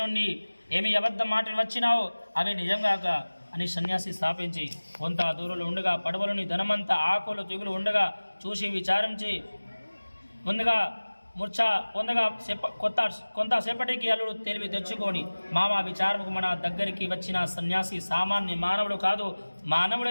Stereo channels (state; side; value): inverted; both; correlation -1.00